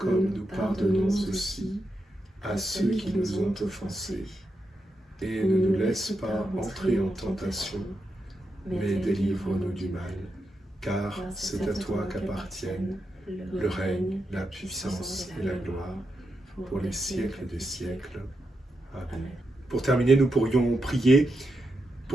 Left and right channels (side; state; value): both; normal; correlation 0.86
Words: nous pardonnons aussi à ceux qui nous ont offensés. et ne nous laisse pas entrer en tentation, mais délivre-nous du mal, car c'est à toi qu'appartiennent le règne, la puissance et la gloire, pour les siècles des siècles. Amen. Pour terminer, nous pourrions prier